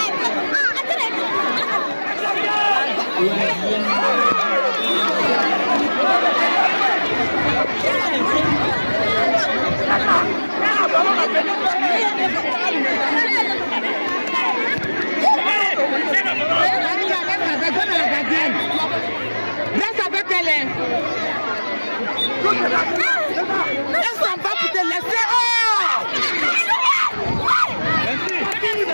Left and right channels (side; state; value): both; inverted; correlation -1.00